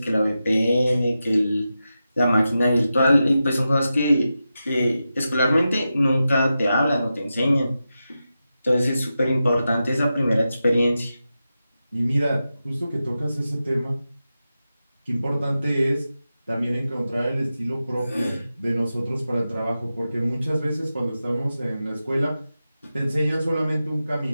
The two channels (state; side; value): inverted; both; correlation -0.91